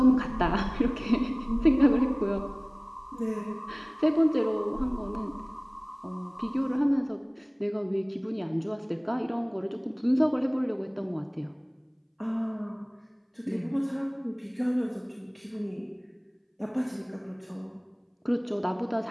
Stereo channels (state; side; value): identical; both; correlation 1.00